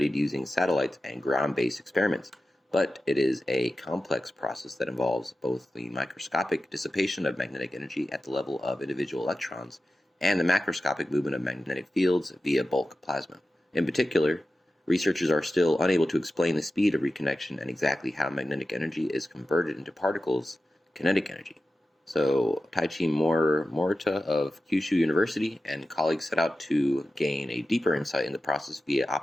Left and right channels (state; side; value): normal; both; correlation 0.93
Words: using satellites and ground-based experiments, but it is a complex process that involves both the microscopic dissipation of magnetic energy at the level of individual electrons and the macroscopic movement of magnetic fields via bulk plasma. In particular, researchers are still unable to explain the speed of reconnection and exactly how magnetic energy is converted into particles, kinetic energy. So, Taichi Morita of Kyushu University and colleagues set out to gain a deeper insight in the process via